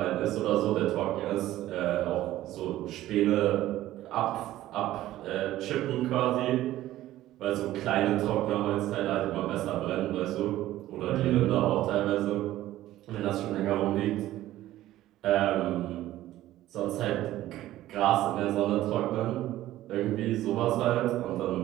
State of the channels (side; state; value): left; quieter; 14.7 dB